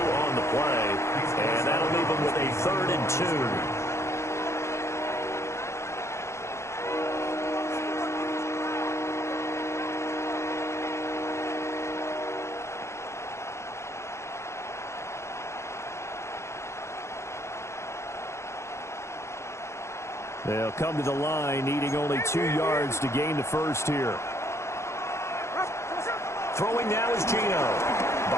the play, and that'll leave him with a 3rd and 2. They'll come to the line, needing only 2 yards to gain the first here. Throwing now is Gino.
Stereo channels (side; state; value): right; late; 0.13 ms